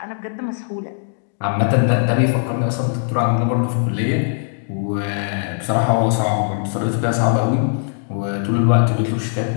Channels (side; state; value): right; silent; digital silence